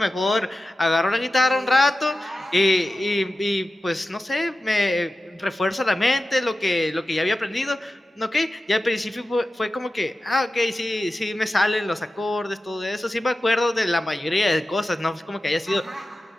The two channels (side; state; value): both; normal; correlation 0.94